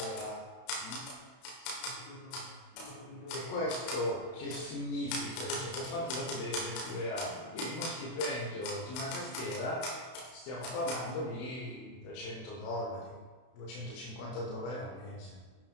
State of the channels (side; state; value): right; late; 32 ms